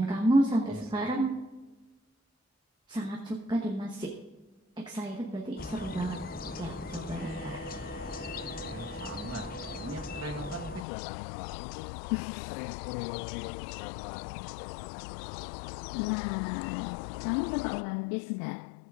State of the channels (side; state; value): right; drops out; at 10.9 s